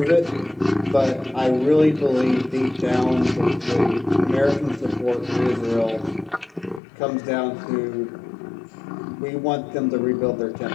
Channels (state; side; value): drops out; right; at 6.8 s